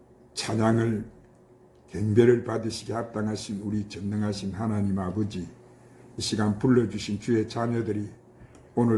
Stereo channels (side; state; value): both; identical; correlation 1.00